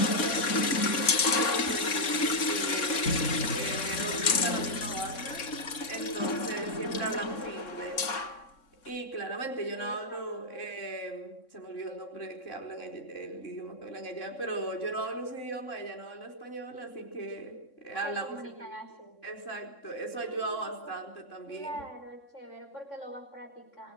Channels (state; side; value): late; right; 3.6 ms